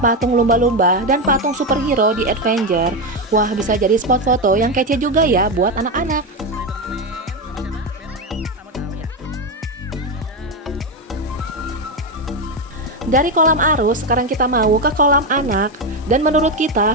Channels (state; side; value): normal; both; correlation 0.11